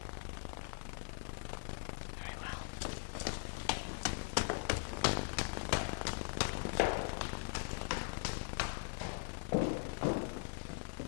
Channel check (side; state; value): right; silent; digital silence